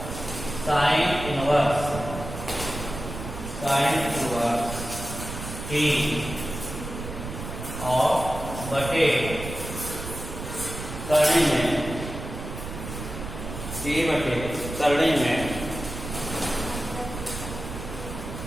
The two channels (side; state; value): right; noise; rumble, 8 dB below the sound